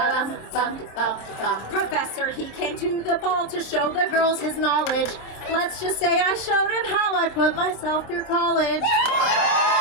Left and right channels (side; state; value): right; late; 26 ms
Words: bum, bum, bum. Professor, he came to the ball to show the girls his knowledge. Let's just say I showed him how I put myself through college.